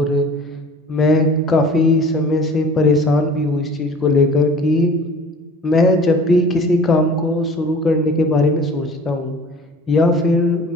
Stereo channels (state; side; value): normal; both; correlation 0.45